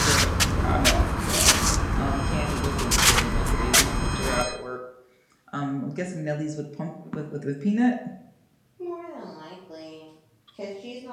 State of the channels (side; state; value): both; identical; correlation 1.00